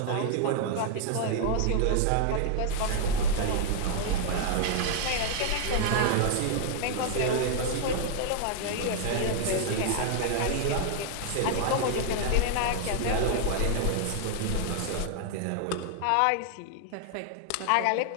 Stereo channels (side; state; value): both; different; correlation 0.00